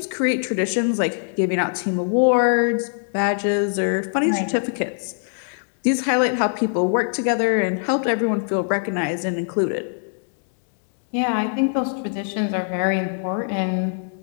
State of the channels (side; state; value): right; silent; digital silence